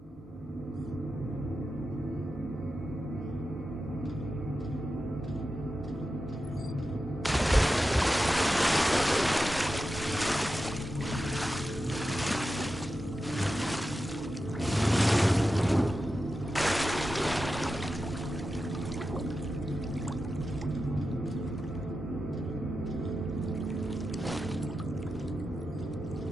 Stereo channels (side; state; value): both; normal; correlation 0.91